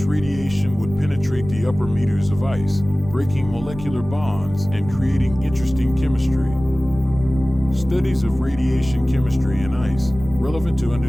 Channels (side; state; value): right; noise; rumble, 13 dB below the sound